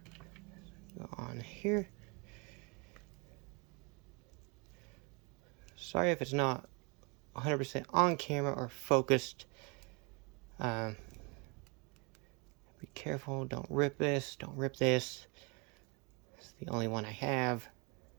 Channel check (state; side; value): quieter; left; 30.8 dB